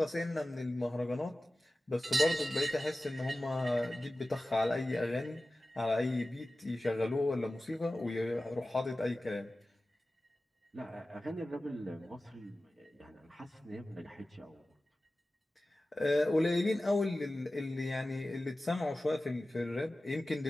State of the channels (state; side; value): normal; both; correlation 0.96